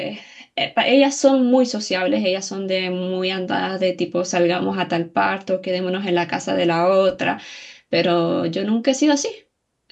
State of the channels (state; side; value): identical; both; correlation 1.00